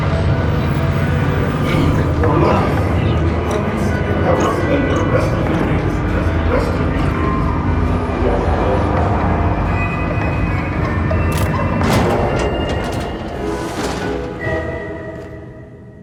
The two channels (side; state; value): both; identical; correlation 1.00